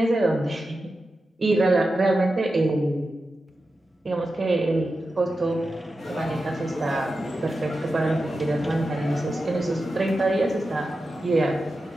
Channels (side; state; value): both; normal; correlation 0.91